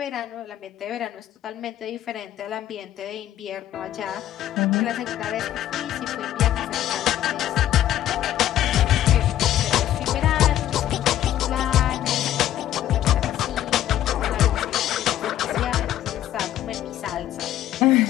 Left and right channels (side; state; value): right; quieter; 12.3 dB